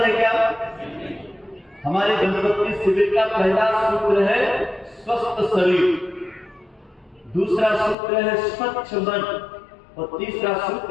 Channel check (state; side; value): drops out; right; at 8.0 s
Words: है क्या? हमारे दंपत्ति शिविर का पहला सूत्र है स्वस्थ शरीर, दूसरा सूत्र है स्वच्छ मन, और तीसरा